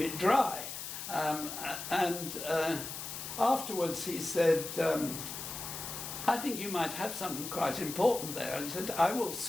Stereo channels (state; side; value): noise; left; hiss, 7 dB below the sound